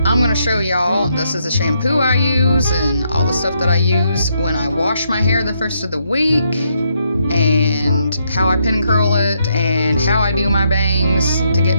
going to show y'all, this is a shampoo I use and all the stuff that I use when I wash my hair the first of the week, and how I pin curl it, and how I do my bangs to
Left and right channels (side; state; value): both; inverted; correlation -0.76